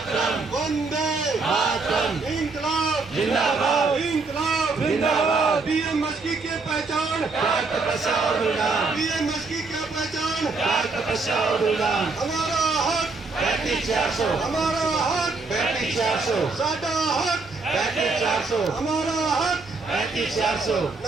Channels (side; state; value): left; quieter; 3.9 dB